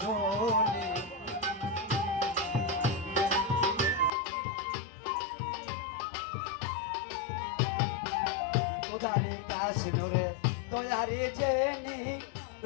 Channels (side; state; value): right; drops out; at 4.1 s